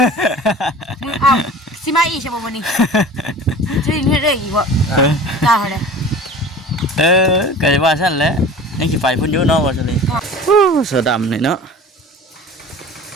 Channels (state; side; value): normal; both; correlation 0.40